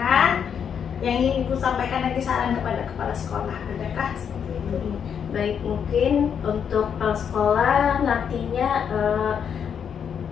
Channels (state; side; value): quieter; right; 7.7 dB